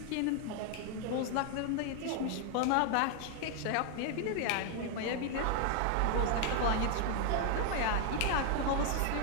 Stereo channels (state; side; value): different; both; correlation 0.01